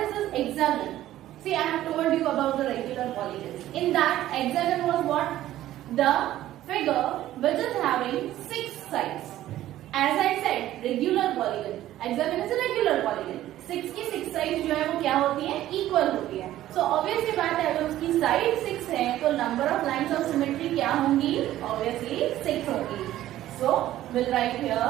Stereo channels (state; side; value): quieter; left; 13.8 dB